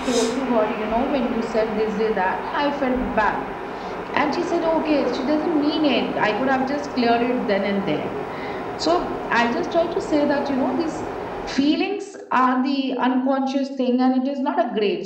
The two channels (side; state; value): both; identical; correlation 1.00